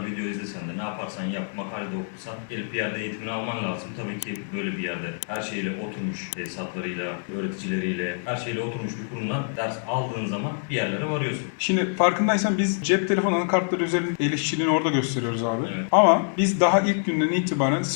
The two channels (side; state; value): right; silent; digital silence